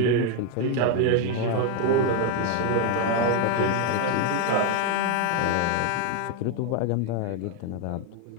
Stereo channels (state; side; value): different; both; correlation 0.01